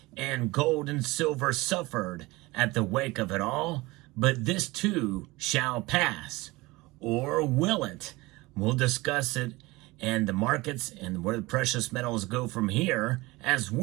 and gold and silver suffered at the wake of it all, but this too shall pass. Or will it? We'll discuss it and the markets and where the precious metals go from here as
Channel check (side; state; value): left; quieter; 21.7 dB